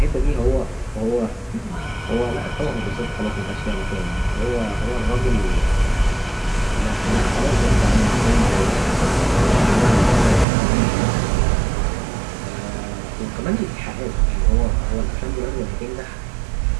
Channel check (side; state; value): left; drops out; at 10.5 s